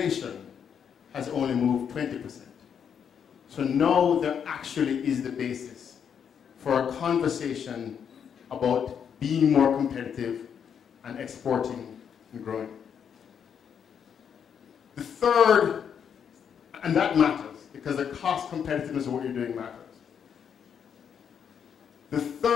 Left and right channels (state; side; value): quieter; right; 7.8 dB